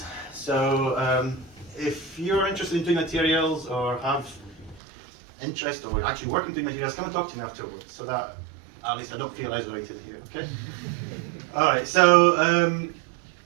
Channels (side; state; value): left; drops out; at 4.8 s